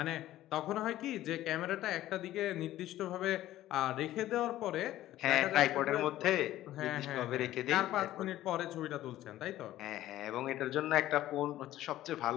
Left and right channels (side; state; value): right; quieter; 14.3 dB